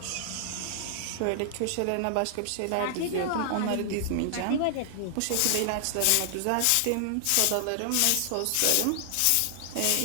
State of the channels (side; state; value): both; different; correlation -0.01